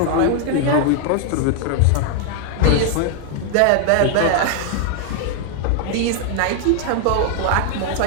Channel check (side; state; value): both; different; correlation 0.00